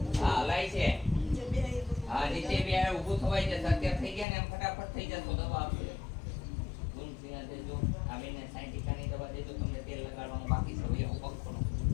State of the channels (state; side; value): drops out; right; at 4.2 s